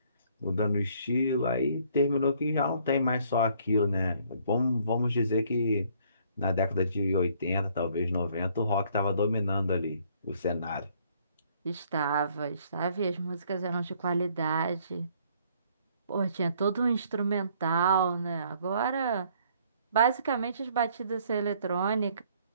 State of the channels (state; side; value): inverted; both; correlation -0.62